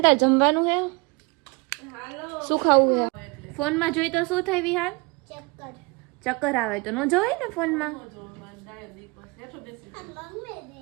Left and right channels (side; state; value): left; quieter; 26.6 dB